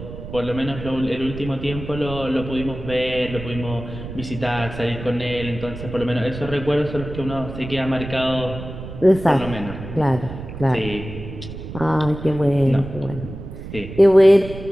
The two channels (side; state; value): right; noise; rumble, 11 dB below the sound